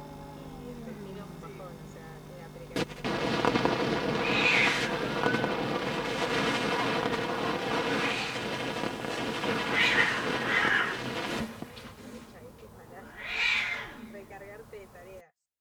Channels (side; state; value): both; identical; correlation 1.00